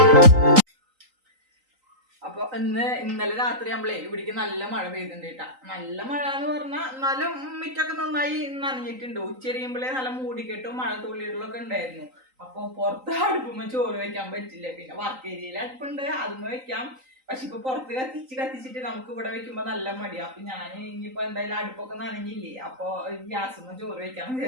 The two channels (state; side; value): late; left; 3.9 ms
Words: അപ്പൊ ഇന്നലെ രാത്രി നമ്മളെ ഇവിടേക്ക് നല്ല മഴ പെയ്തിട്ടുണ്ട് കേട്ടാ. നല്ല മഴ എന്ന് പറഞ്ഞാൽ എന്നാലും മിറ്റൊക്കെ നന്നായി നനഞ്ഞിട്ടുണ്ട്. ഉച്ചരിയുമ്പോഴേ നല്ല മൂടിക്കെട്ടും മഴ തുള്ളികളൊക്കെ ഉണ്ടായിരുന്നു. അപ്പൊ പുറത്ത് അടുപ്പുമ്പോ ചോറ് വെക്കാൻ പറ്റില്ല. പിന്നെ വർക്ക് ഏരിയയിൽ അടുപ്പുണ്ട്, അതുമ്മ വെക്കാം. പക്ഷെ ഇപ്പൊ പുറത്ത് കത്തിച്ചിട്ട് നമുക്ക് ഇവിടെ വെക്കുമ്പോ നല്ല മടിയാ. അപ്പൊ ഞാൻ ഇനിയിപ്പോ എന്തായാലും അടുപ്പൊക്കെ നനഞ്ഞില്ലേ, അപ്പൊ ഗ്യാസുമ്മ ചോറ് വെക്കാന്ന്